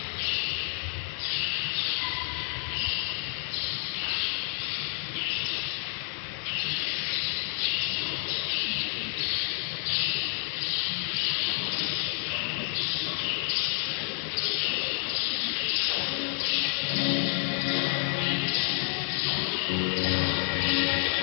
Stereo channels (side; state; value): right; silent; digital silence